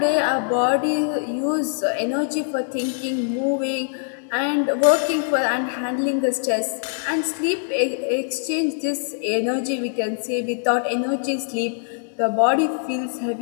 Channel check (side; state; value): right; silent; 58 dB below the other